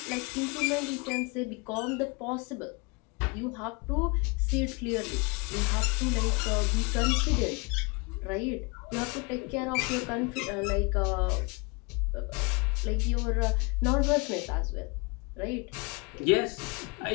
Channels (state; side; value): quieter; right; 29.3 dB